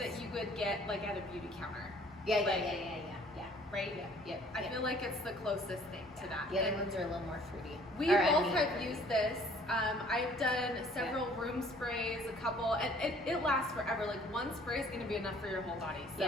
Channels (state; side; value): normal; both; correlation 0.56